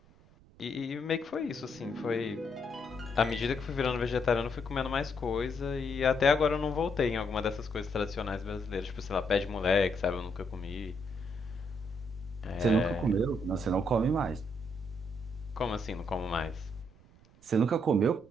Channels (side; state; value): right; noise; rumble, 26 dB below the sound